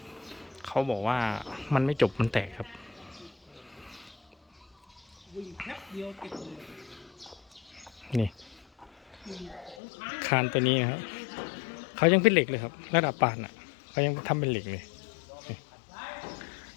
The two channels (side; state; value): right; drops out; at 9.8 s